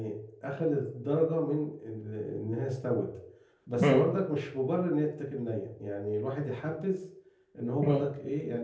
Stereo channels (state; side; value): identical; both; correlation 1.00